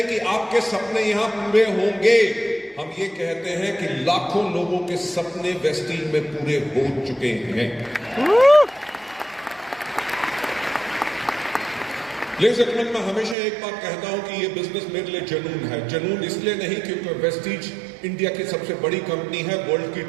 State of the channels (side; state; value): left; drops out; at 13.4 s